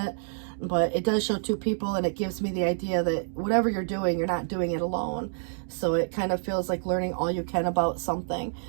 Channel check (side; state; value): left; silent; digital silence